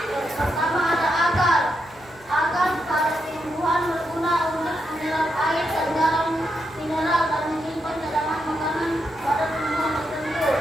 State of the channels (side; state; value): right; noise; rumble, 27 dB below the sound